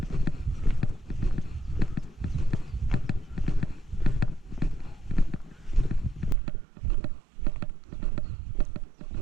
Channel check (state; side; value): drops out; left; at 6.4 s